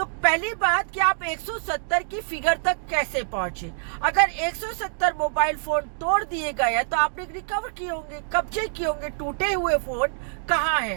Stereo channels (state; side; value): silent; left; digital silence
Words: पहली बात कि आप 170 की फिगर तक कैसे पहुंचे। अगर 170 मोबाइल फोन तोड़ दिए गए हैं तो आपने रिकवर किए होंगे, कब्जे किए होंगे, टूटे हुए फोन कहाँ